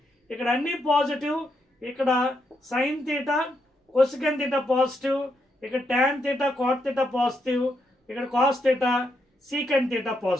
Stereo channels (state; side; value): normal; both; correlation 0.80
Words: ఇక్కడ అన్ని పాజిటివ్, ఇక్కడ sine theta cosec theta positive, ఇక్కడ tan theta cot theta positive, ఇక్కడ cos theta secant theta